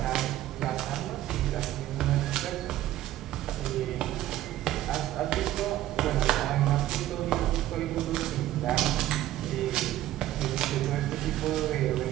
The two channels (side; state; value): left; quieter; 14.0 dB